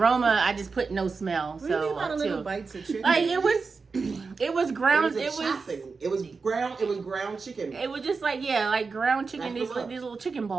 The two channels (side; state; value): left; quieter; 4.6 dB